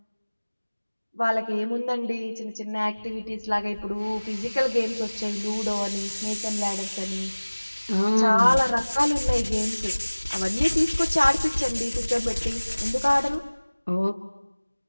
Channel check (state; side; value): inverted; both; correlation -1.00